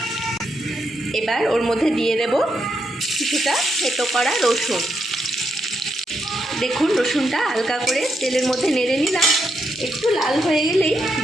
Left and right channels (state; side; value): normal; both; correlation 0.81